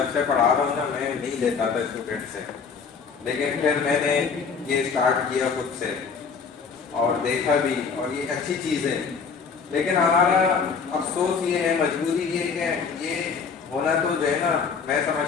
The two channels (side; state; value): right; quieter; 5.7 dB